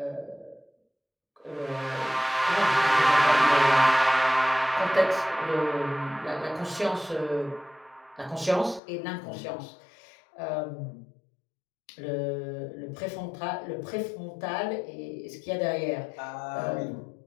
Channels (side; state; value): right; drops out; at 8.8 s